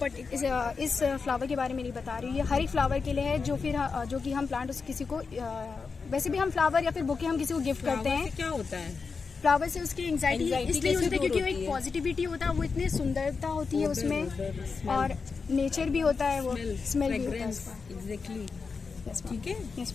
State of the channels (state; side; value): quieter; right; 4.9 dB